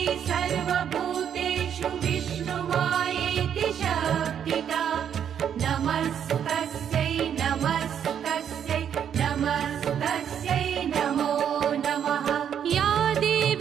सर्वभूतेषु विष्णुमायेति शब्दिता नमस्तस्यै नमस्तस्यै नमस्तस्यै नमो नमः। या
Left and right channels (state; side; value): quieter; left; 8.7 dB